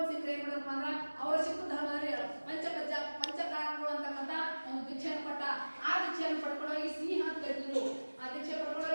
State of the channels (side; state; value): both; inverted; correlation -1.00